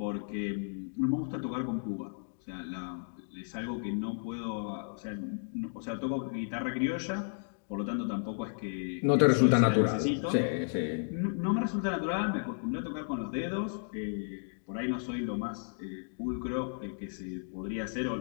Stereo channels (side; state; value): right; silent; digital silence